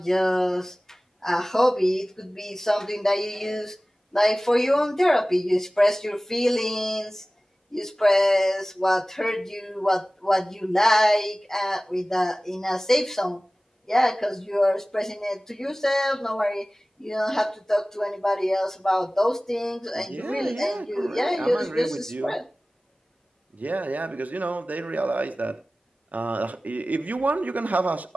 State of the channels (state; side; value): normal; both; correlation 0.98